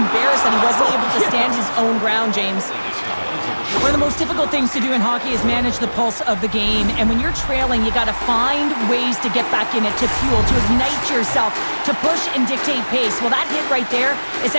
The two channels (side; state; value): both; inverted; correlation -1.00